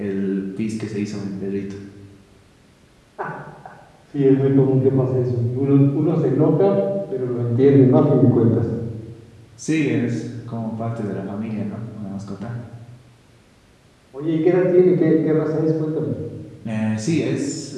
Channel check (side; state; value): both; identical; correlation 1.00